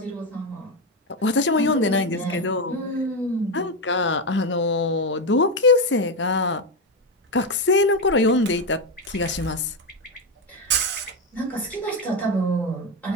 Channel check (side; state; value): both; normal; correlation 0.10